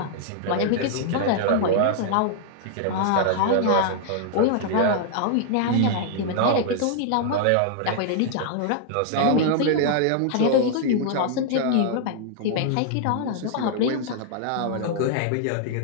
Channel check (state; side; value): different; both; correlation -0.01